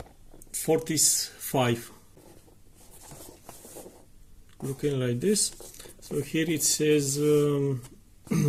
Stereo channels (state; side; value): identical; both; correlation 1.00